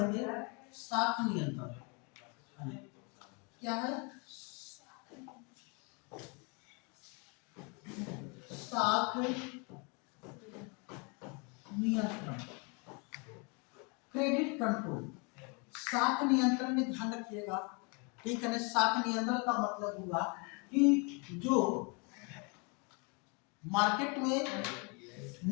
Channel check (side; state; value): right; quieter; 32.6 dB